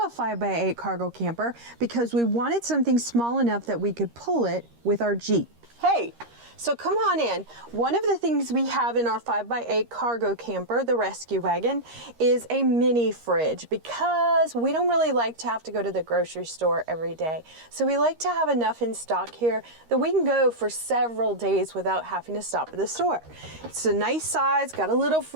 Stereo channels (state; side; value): late; left; 13 ms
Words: a 5x8 cargo camper because we wanted something small enough that we could pull it with our Jeep. Hey, so come on in. One of the things we have in our 5x8 cargo camper, the rescue wagon, is a mini fridge because we don't really like to have to go to the grocery store every day. So we like to have enough in stock here that we can go for several days without having to stop at the store. It's a nice size, got a little